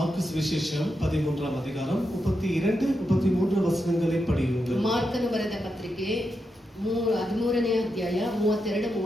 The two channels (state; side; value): normal; both; correlation 0.86